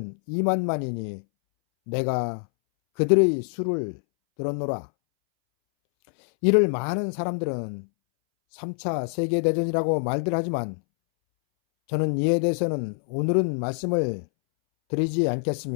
2만만이니 내가 그들의 수를 들었노라. 이를 많은 사람들은 3차 세계대전이라고 말들 하지만 저는 이에 대해서는 오늘은 말씀을 드리지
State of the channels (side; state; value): right; silent; 62 dB below the other